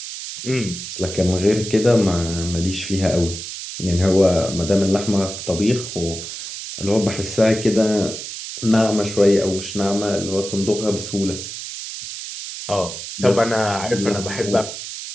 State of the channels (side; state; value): right; noise; hiss, 9 dB below the sound